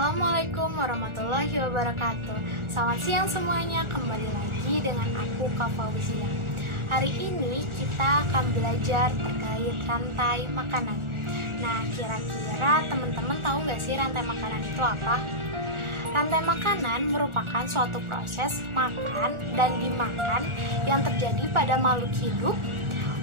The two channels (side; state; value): left; late; 1.4 ms